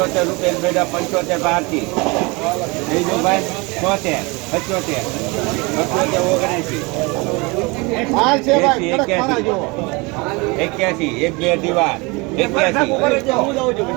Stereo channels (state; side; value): quieter; left; 26.7 dB